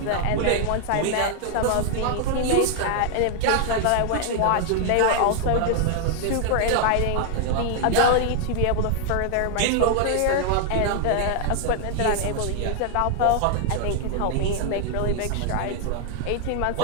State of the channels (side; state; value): both; different; correlation 0.00